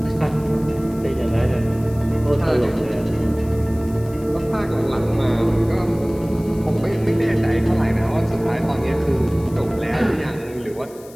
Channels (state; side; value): noise; left; hiss, 23 dB below the sound